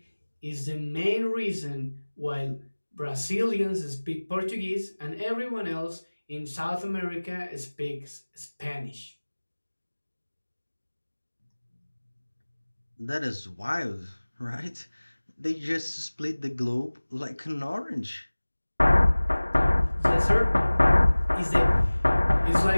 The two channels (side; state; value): both; inverted; correlation -1.00